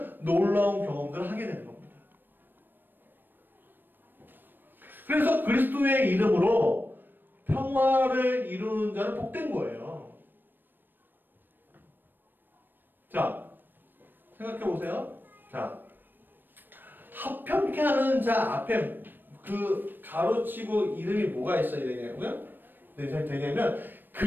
놀라운 경험들을 하게 되는 겁니다. 그래서 그리스도의 이름으로 평화를 이루는 자는 복된 거예요. 자, 생각해 보세요. 자, 화평케 하는 자 앞에 그 가로치고 이름이 뭐가 있어야 되냐고요? 되냐면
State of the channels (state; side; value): late; left; 0.093 ms